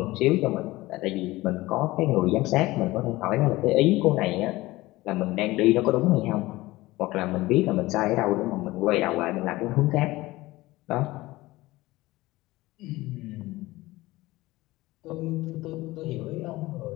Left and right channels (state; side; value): quieter; right; 19.2 dB